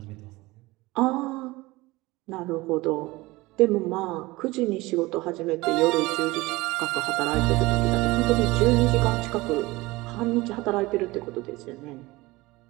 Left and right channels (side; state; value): left; quieter; 21.0 dB